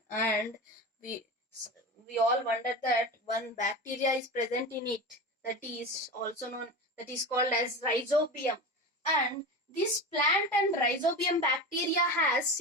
and we all wonder that one bacteria is present in it, that is called as rhizobium, and this plant and rhizobium bacteria has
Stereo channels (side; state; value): both; normal; correlation 0.27